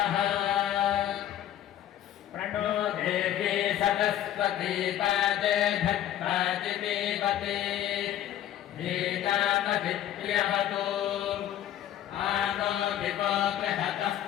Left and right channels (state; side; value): quieter; right; 11.7 dB